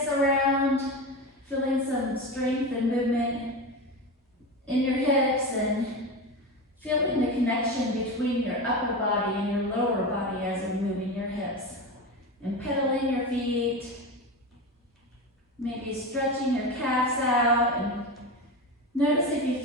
around, feeling some strength and movement in your hips and feeling the connection between your upper body and your lower body as you're moving your hips. And pedaling your feet, maybe stretching your calves out, and notice if you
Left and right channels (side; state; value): both; normal; correlation 0.22